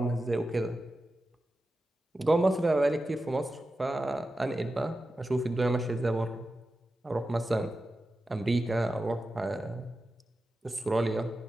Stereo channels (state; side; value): normal; both; correlation 0.92